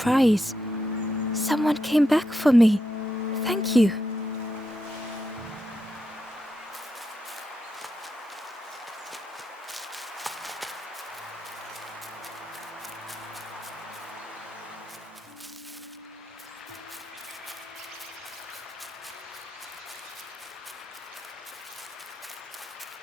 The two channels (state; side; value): normal; both; correlation 0.84